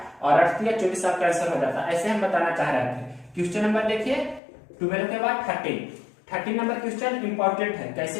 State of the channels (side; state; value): right; drops out; at 4.4 s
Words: और 8 या 24 आपका आंसर हो जाता। ऐसे हम बताना चाह रहे थे। क्वेश्चन नंबर देखिए 12 के बाद 13 नंबर क्वेश्चन इंपॉर्टेंट है। कैसे